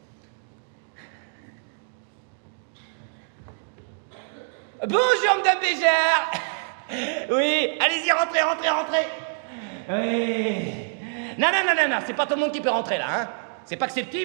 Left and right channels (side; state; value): left; silent; 61 dB below the other